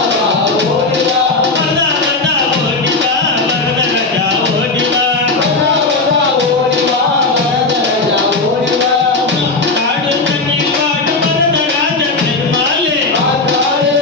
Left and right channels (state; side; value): quieter; right; 3.5 dB